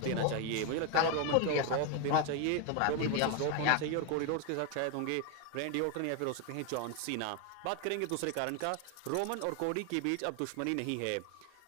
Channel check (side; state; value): both; different; correlation 0.01